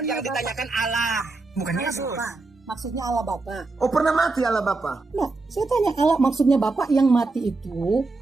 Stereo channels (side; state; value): left; quieter; 3.5 dB